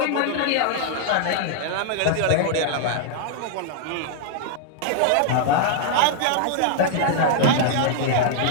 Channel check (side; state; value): both; different; correlation 0.00